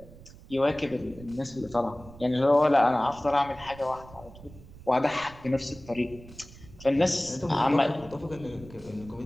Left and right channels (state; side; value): noise; right; rumble, 19 dB below the sound